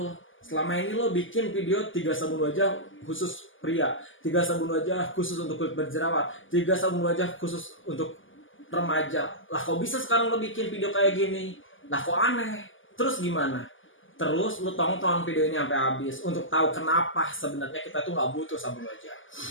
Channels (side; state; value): right; late; 0.58 ms